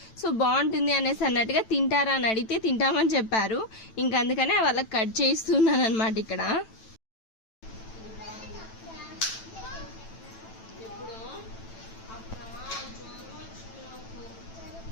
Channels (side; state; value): right; late; 9.0 ms